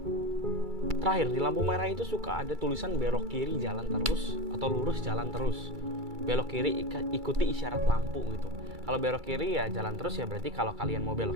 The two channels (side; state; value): left; late; 2.3 ms